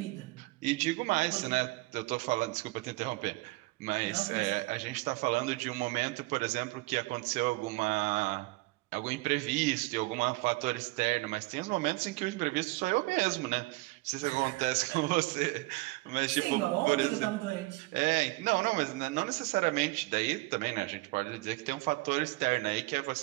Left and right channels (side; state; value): left; quieter; 22.3 dB